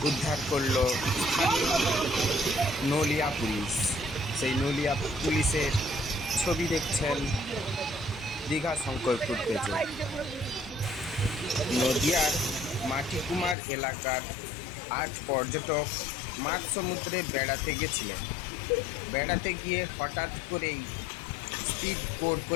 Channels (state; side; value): drops out; right; at 13.6 s